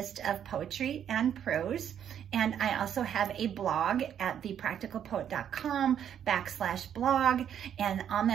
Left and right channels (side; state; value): left; quieter; 9.3 dB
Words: of poetry and prose. And I also have a blog at thepracticalpoet.com/blog. And on